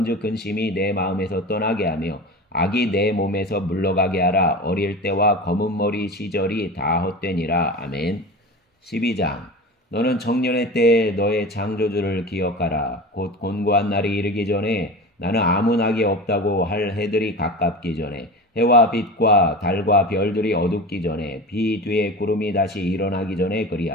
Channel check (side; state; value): both; normal; correlation 0.31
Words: 근심이 내 마음에서 떠나게 하며 악이 내 몸에서 물러가게 하라. 어릴 때와 검은 머리 시절이 다 헛되니라. 아멘. 12장. 너는 청년의 때에 너의 창조주를 기억하라. 곧 곤고한 날이 이르기 전에 나는 아무 낙이 없다고 할 해들이 가깝기 전에 해와 빛과 달과 별들이 어둡기 전에 비 뒤에 구름이 다시 일어나기 전에